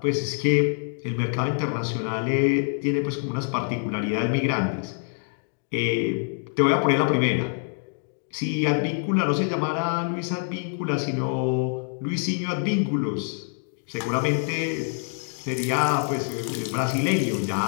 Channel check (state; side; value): silent; right; 61 dB below the other